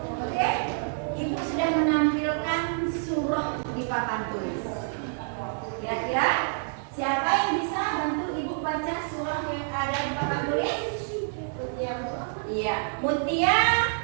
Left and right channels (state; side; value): silent; left; digital silence